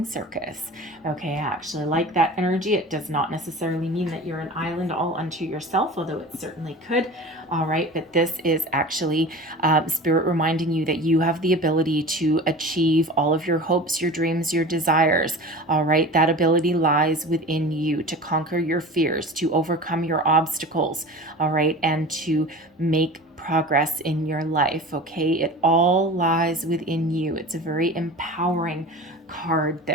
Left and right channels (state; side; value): normal; both; correlation 0.36